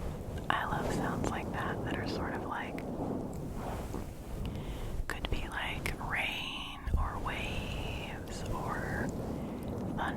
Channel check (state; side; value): identical; both; correlation 1.00